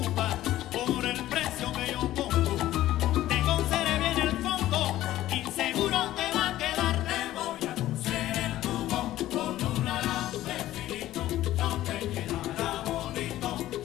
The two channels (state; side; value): quieter; right; 14.4 dB